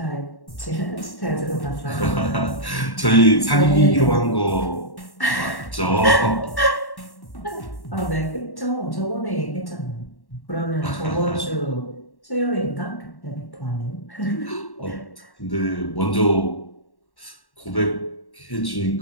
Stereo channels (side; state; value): right; late; 1.1 ms